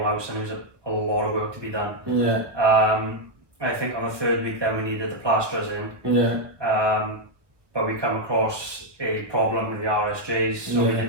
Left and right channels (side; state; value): left; late; 1.1 ms